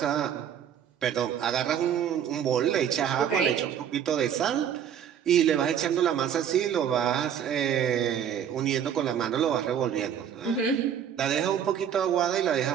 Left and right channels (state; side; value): quieter; left; 8.9 dB